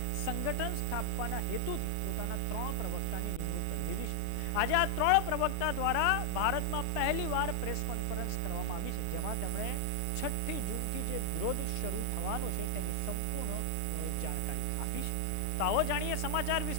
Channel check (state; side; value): different; both; correlation 0.00